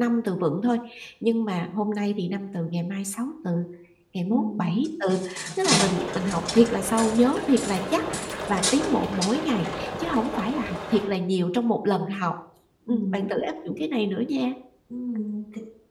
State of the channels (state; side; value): identical; both; correlation 1.00